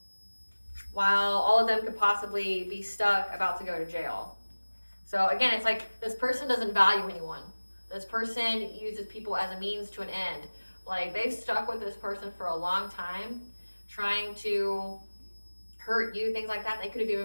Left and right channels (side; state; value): both; inverted; correlation -1.00